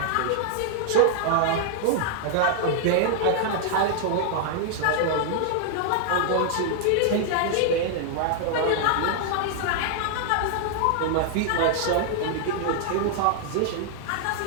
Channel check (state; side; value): different; both; correlation -0.01